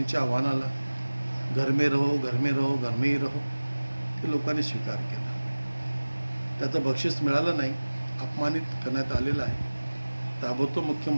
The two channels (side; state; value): both; inverted; correlation -1.00